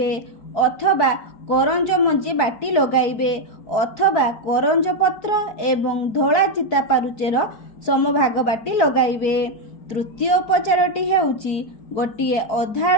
अथवा करंज मंजी बाटी लगाइबे अथवा करंज पत्र एवं धोला चिता पारुचेर समभाग बाटी लगाइबे। तृतीय उपचारटी हेउची गोटिए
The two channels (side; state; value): right; late; 4.6 ms